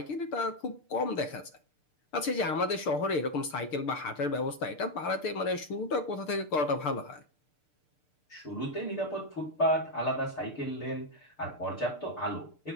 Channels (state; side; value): late; right; 6.7 ms